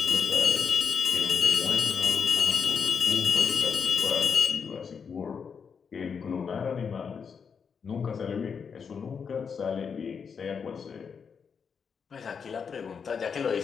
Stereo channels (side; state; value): right; quieter; 6.3 dB